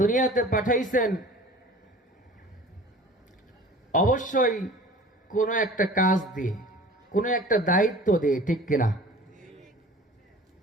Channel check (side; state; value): both; normal; correlation 0.43